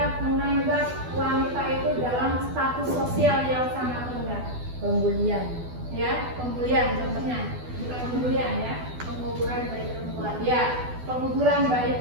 menganggap wanita itu dalam status sosial yang sangat rendah. Pembulian. Ya, pembulian contohnya, bukan pembulian ya, penguburan bayi perempuan. Ya, penguburan bayi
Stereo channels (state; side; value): late; left; 12 ms